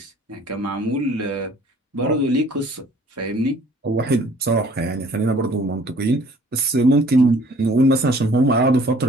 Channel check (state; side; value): normal; both; correlation 0.55